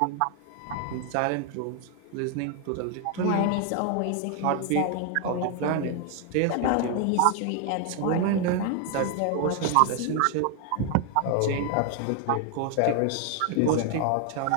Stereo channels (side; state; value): both; different; correlation 0.01